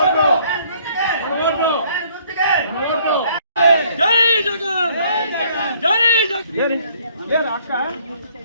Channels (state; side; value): inverted; both; correlation -0.62